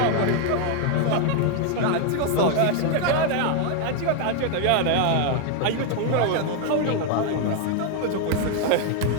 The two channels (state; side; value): different; both; correlation 0.00